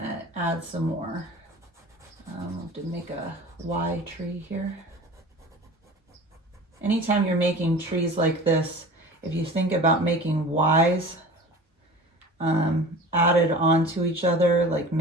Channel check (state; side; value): normal; both; correlation 0.38